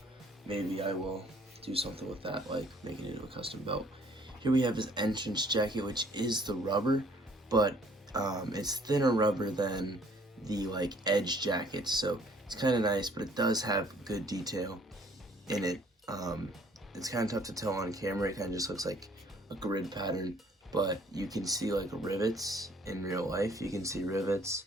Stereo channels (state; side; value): normal; both; correlation 0.59